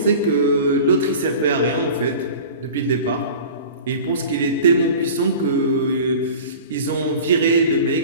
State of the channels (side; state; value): both; inverted; correlation -0.39